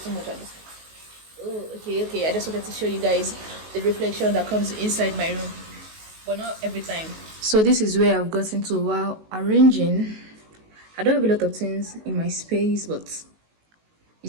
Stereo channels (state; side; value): late; left; 19 ms